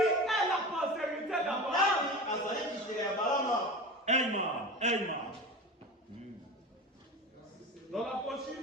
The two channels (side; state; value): both; normal; correlation 0.30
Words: la postérité d'Abraham? Dans la